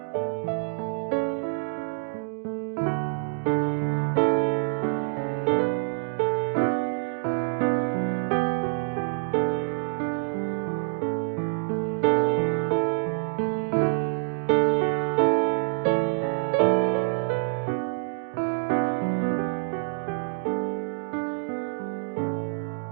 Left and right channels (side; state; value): left; silent; digital silence